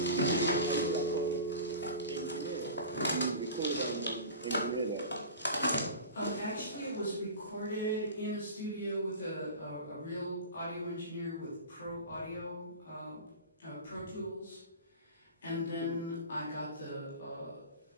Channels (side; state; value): both; inverted; correlation -0.34